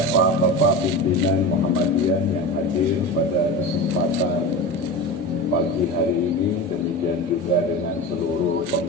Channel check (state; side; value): normal; both; correlation 0.27